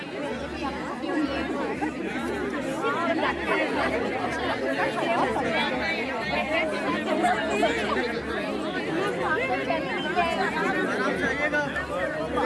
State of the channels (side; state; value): both; identical; correlation 1.00